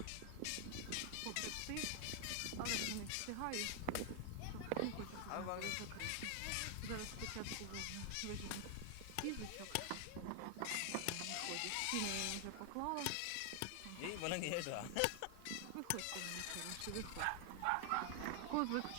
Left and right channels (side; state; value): both; different; correlation 0.00